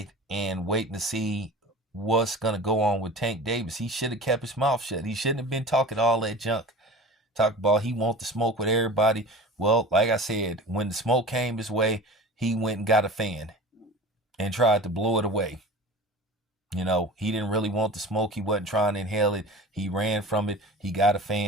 and waiting to see what's going to go on with Tank Davis. He should have kept his mouth shut. He shouldn't have been talking all that junk. Talk about he want to smoke with everybody. Well, like I said, when the smoke came his way, he went and got a fan and tried to blow it away. He didn't really want the smoke. He wasn't trying to inhale it. He ran from it. He got a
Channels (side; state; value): both; normal; correlation 0.37